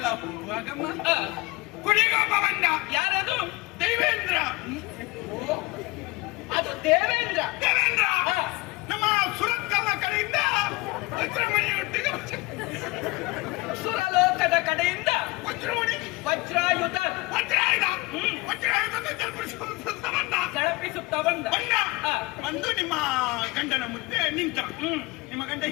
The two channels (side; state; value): right; quieter; 23.3 dB